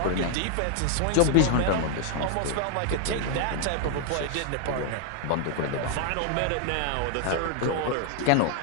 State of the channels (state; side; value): different; both; correlation 0.00